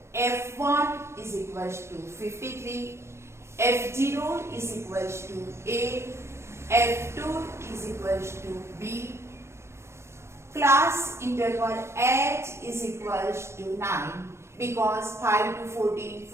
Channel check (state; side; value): late; left; 0.13 ms